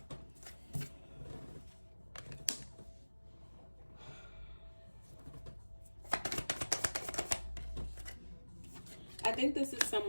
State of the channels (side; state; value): both; inverted; correlation -1.00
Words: think this is